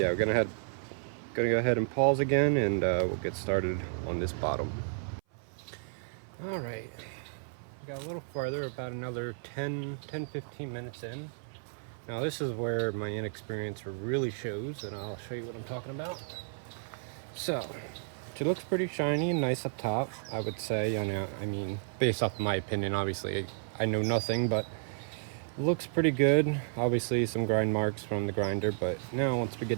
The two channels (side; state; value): left; silent; 55 dB below the other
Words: we're gonna go ahead and pause again, and we'll get started on this bottom. All right, we got a little farther, about another 10-15 minutes in. Now this is where my inexperience really shows, and I'll show you what I'm talking about. So it looks pretty shiny and nice up top, I would say. I mean, based off my opinion, obviously I know nothing, but it looks pretty good. Obviously some grind marks from the grinder, but now once we